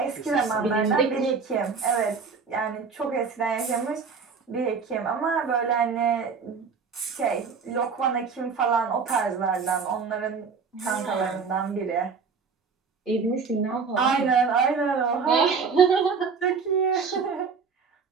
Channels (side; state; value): left; quieter; 5.4 dB